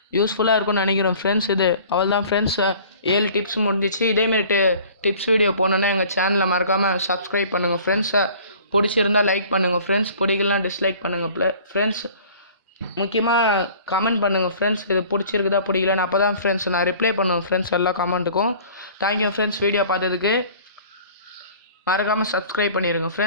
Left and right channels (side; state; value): both; inverted; correlation -0.48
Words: யூஸ்ஃபுல்லாக இருக்கும்னு நினைக்கிறோம் ஃப்ரெண்ட்ஸ். இது அவள் தான் ஃப்ரெண்ட்ஸ், 7 டிப்ஸ் முடிஞ்சிச்சு. இதேமாரி டிப்ஸ் வீடியோ போனோன்னா எங்கள் சேனலை மறக்காமல் சப்ஸ்கிரைப் பண்ணுங்கள் ஃப்ரெண்ட்ஸ். பிடிச்சிருந்தால் லைக் பண்ணுங்கள் ஃப்ரெண்ட்ஸ், பிடிக்கலாம் டிஸ்லைக் பண்ணுங்கள் ஃப்ரெண்ட்ஸ். முக்கியமாக கமெண்ட் பண்ணுங்கள் ஃப்ரெண்ட்ஸ், இது பிடிச்சிருக்குதா பிடிக்கலன்னு. அப்போ தான் ஃப்ரெண்ட்ஸ் நான் ரிப்ளை பண்ணுவேன் ஃப்ரெண்ட்ஸ் எல்லா கமெண்ட்டுக்கும். தேங்க்யூ ஃப்ரெண்ட்ஸ், வீடியோ பார்த்ததுக்கு. மறக்காமல் சப்ஸ்கிரைப் பண்ணிடுங்க